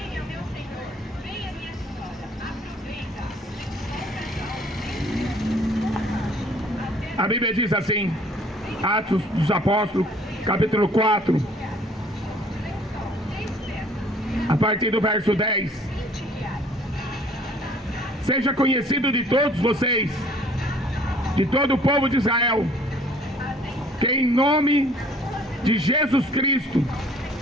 A Bíblia diz assim, Atos dos Apóstolos, capítulo 4, a partir do verso 10. Seja conhecido de todos vocês, de todo o povo de Israel, que em nome de Jesus Cristo,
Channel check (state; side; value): normal; both; correlation 0.56